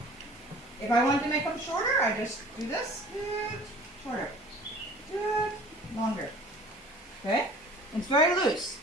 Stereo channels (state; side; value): normal; both; correlation 0.47